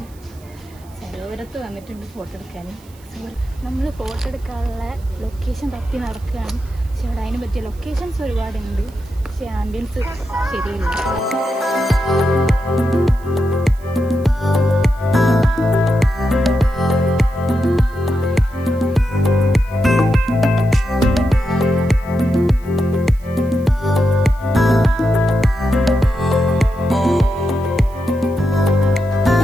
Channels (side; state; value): right; noise; hiss, 27 dB below the sound